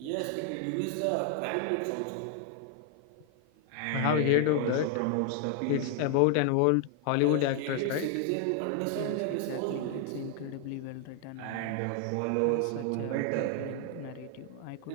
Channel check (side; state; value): both; different; correlation 0.00